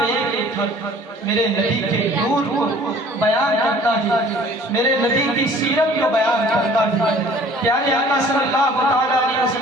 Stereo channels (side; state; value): both; normal; correlation 0.51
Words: ایک ایک حرف میرے نبی کے نور کو بیان کرتا ہے, میرے نبی کی سیرت کو بیان کرتا ہے. پیارے آقا صلی اللہ تعالیٰ علیہ